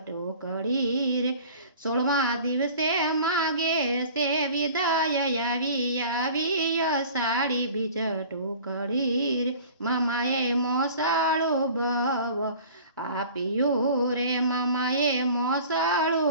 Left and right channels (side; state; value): both; inverted; correlation -0.45